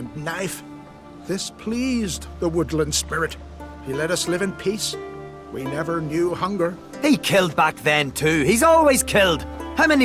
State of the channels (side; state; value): both; identical; correlation 1.00